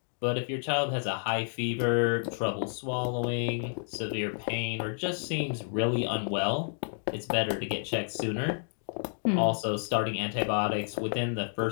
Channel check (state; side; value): silent; right; digital silence